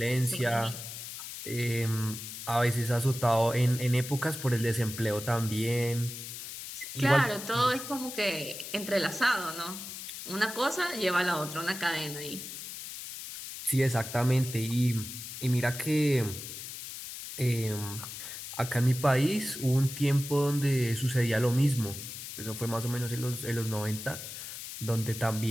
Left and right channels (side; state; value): left; noise; hiss, 9 dB below the sound